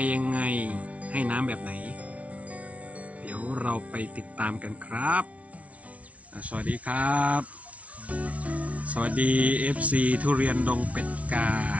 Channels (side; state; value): left; late; 0.066 ms